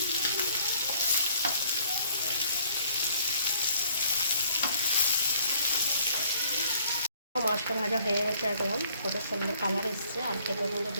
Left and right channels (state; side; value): inverted; both; correlation -0.60